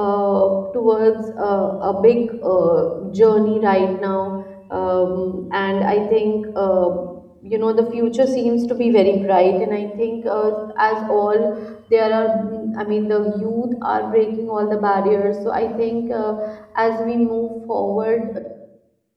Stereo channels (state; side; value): identical; both; correlation 1.00